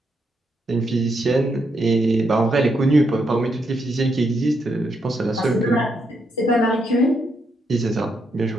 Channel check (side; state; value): both; normal; correlation 0.79